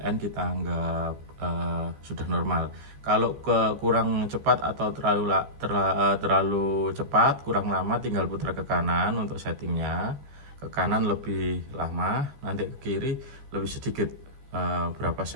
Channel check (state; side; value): late; left; 14 ms